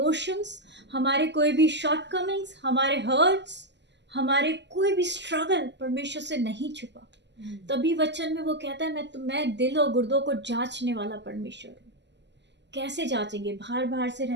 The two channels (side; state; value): left; late; 0.51 ms